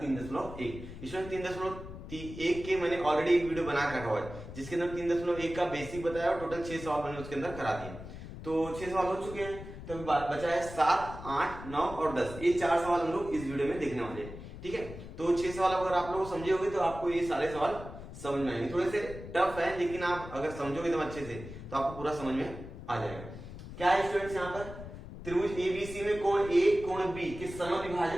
3.1। इसमें 3.1 के मैंने ऑलरेडी एक वीडियो बना रखा हुआ है जिसके अंदर 3.1 का बेसिक बताया और टोटल 6 सवाल मैंने उसके अंदर करा दिए। तो 6 सवाल हो चुके हैं, तो बचा है 7, 8, 9 और 10। ये 4 सवाल हम लोग इस वीडियो में देखने वाले हैं, ठीक है। तो 6 सवाल अगर आप लोग समझे होंगे तो आपको ये सारे सवाल समझ में आएंगे। थोड़े से टफ है लेकिन आप अगर समझोगे एकदम अच्छे से तो आपको पूरा समझ में आ जाएगा। क्या है स्टूडेंट्स, यहाँ पर त्रिभुज एबीसी में कोण ए कोण बी के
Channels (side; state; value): left; noise; rumble, 12 dB below the sound